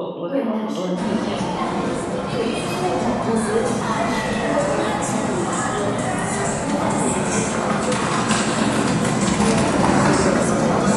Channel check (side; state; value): both; identical; correlation 1.00